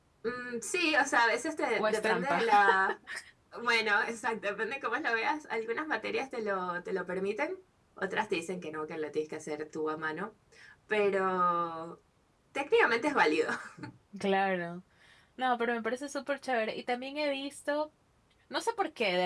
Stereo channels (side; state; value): both; identical; correlation 1.00